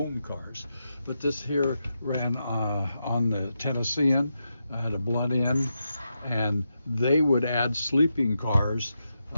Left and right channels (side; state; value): both; inverted; correlation -0.86